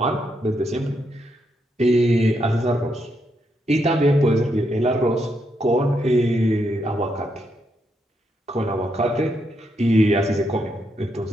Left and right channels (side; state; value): both; normal; correlation 0.79